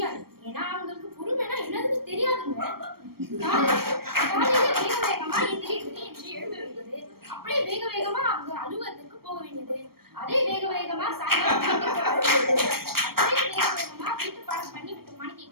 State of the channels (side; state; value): left; late; 0.94 ms